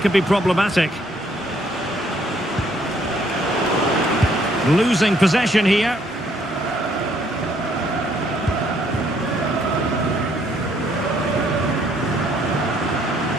could be problematic. Losing possession here.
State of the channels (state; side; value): normal; both; correlation 0.67